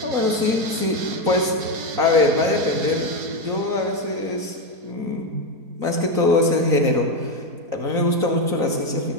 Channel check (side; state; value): left; late; 3.9 ms